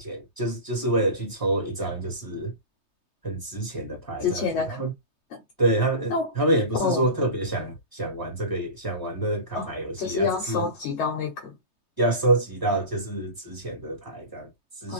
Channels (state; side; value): late; right; 3.2 ms